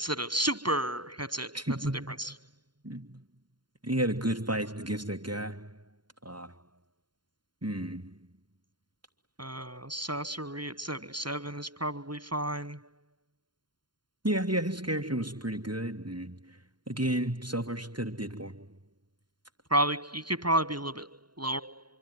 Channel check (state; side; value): late; left; 0.72 ms